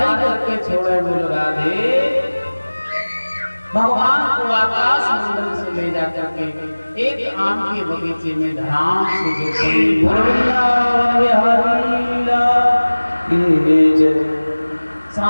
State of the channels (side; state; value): both; inverted; correlation -1.00